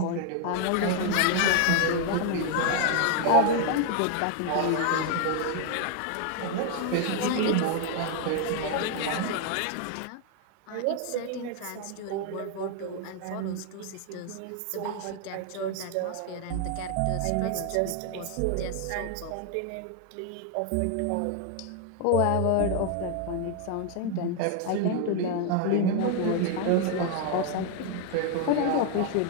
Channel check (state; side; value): different; both; correlation 0.00